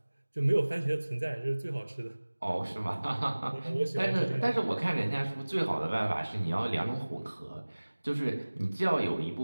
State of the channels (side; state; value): both; inverted; correlation -1.00